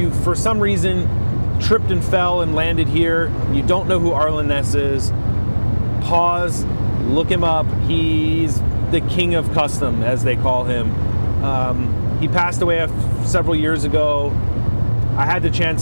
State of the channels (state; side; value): inverted; both; correlation -1.00